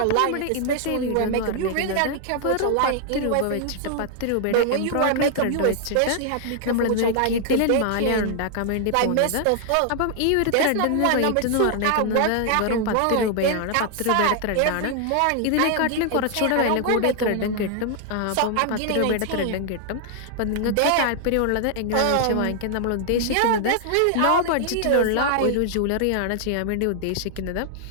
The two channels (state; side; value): different; both; correlation 0.00